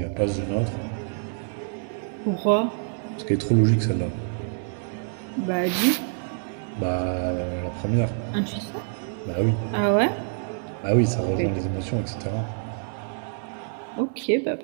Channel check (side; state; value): left; silent; digital silence